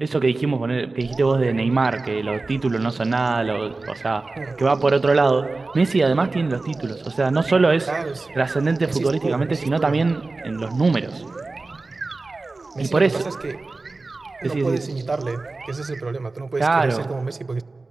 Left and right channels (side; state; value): left; quieter; 3.5 dB